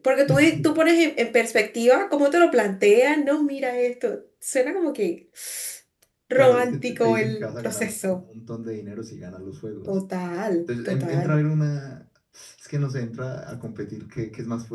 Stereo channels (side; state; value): both; identical; correlation 1.00